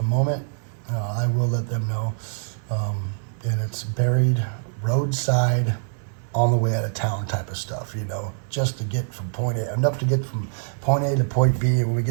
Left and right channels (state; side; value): silent; left; 61 dB below the other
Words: moment. I will let them know. And it's buried roadside, on the way out of town type of stuff, just to get from point A, enough to get from point A to point B, and when we